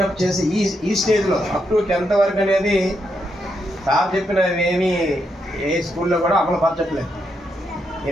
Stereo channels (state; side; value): normal; both; correlation 0.81